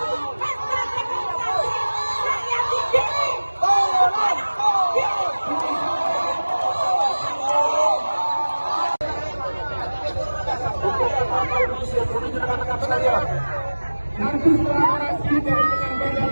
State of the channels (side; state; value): both; inverted; correlation -1.00